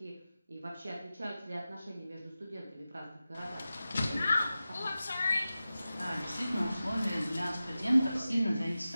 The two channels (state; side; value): inverted; both; correlation -0.94